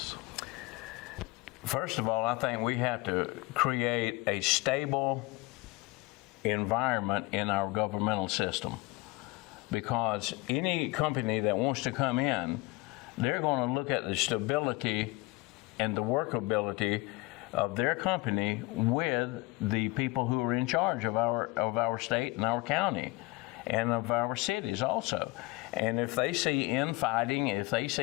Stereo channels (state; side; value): quieter; right; 23.0 dB